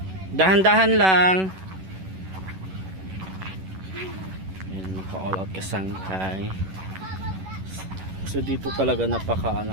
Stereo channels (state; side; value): late; left; 11 ms